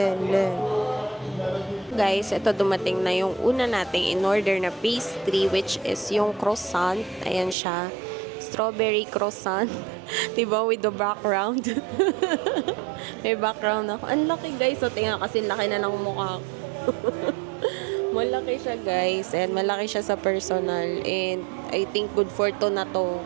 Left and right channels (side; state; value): left; drops out; at 7.6 s